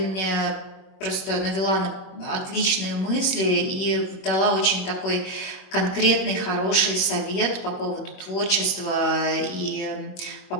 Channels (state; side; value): late; right; 21 ms